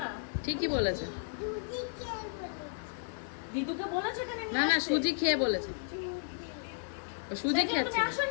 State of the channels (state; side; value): silent; right; digital silence